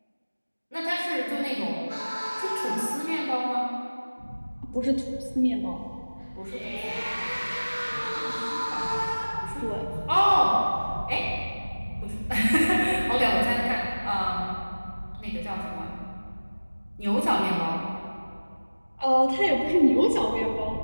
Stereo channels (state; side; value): inverted; both; correlation -1.00